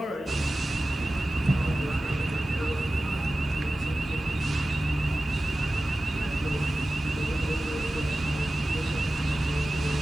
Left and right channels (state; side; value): normal; both; correlation 0.95